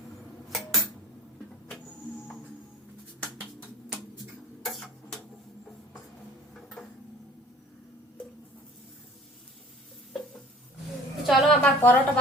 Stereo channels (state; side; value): normal; both; correlation 0.49